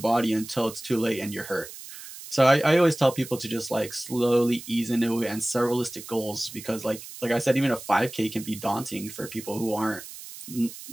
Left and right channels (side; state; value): right; noise; hiss, 14 dB below the sound